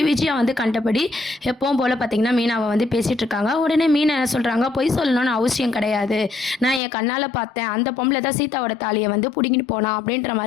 விஜயா வந்து கண்டபடி எப்பவும் போல பார்த்தீங்கன்னா, மீனாவ வந்து பேசிட்டு இருக்காங்க. உடனே மீனா என்ன சொல்றாங்க, "பொய் சொல்லணும்னு அவசியம் கிடையாது. நான் என் கண்ணால பார்த்தேன். அந்த பொம்பள தான் சீதாவோட தாலிய வந்து புடுங்கிட்டு போனா." அப்படின்ற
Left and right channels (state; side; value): drops out; right; at 6.8 s